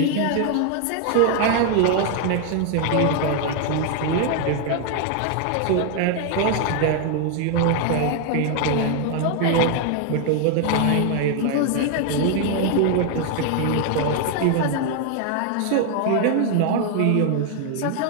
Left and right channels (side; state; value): both; different; correlation 0.00